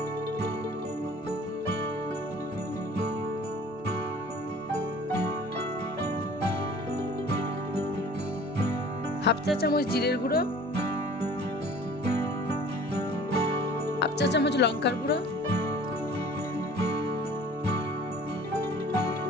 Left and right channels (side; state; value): both; normal; correlation 0.48